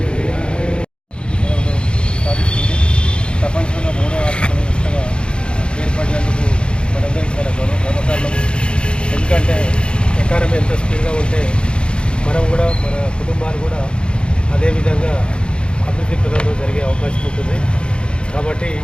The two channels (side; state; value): right; late; 0.054 ms